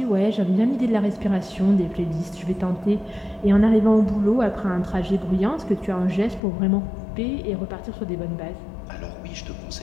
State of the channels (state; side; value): drops out; right; at 6.4 s